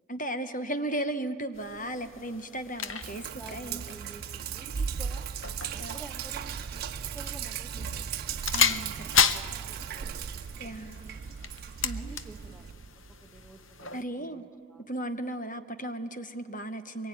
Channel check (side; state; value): both; normal; correlation 0.13